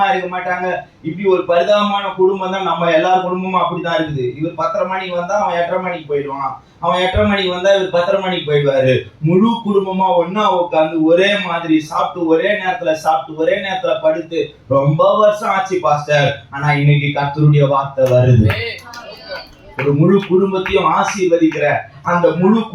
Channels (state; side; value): identical; both; correlation 1.00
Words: இருக்க மாட்டாங்க. இப்படி ஒரு பரிதாபமான குடும்பம் தான் நம்ம எல்லார் குடும்பமும் அப்படிதான் இருக்குது. இவர் 10:30 மணிக்கு வந்தா அவன் 8:30 மணிக்கு போயிடுவான், அவன் 8:30 மணிக்கு வந்தா இவர் 10:30 மணிக்கு போயிடுவாரு. முழு குடும்பமா ஒன்னா உட்காந்து ஒரே மாதிரி சாப்பிட்டு, ஒரே நேரத்துல சாப்பிட்டு, ஒரே நேரத்துல படுத்து ரொம்ப வருஷம் ஆச்சு பாஸ்டர். ஆனா இன்னைக்கு கர்த்தருடைய வார்த்தை வருது, ஒரு முழு குடும்பத்தையும் ஆசீர்வதிக்கிற, அந்த முழு